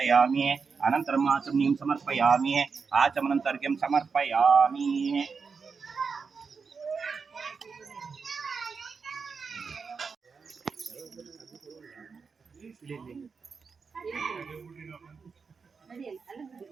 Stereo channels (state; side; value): quieter; left; 5.3 dB